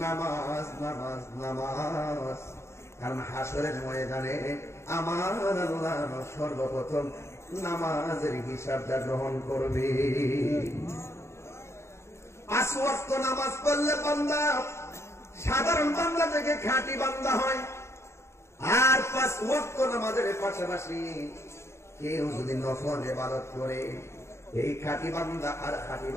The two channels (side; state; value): right; late; 0.13 ms